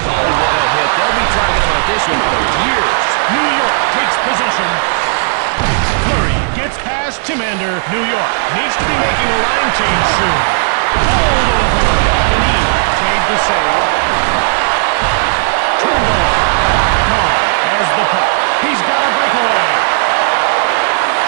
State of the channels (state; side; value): silent; left; digital silence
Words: Oh, what a hit. They'll be talking about this one for years. New York takes possession. Fleury gets past Timander. New York needs to be making a line change soon. Hold over. Denis made the save. Turned over. Kahn has the puck. He's got a breakaway.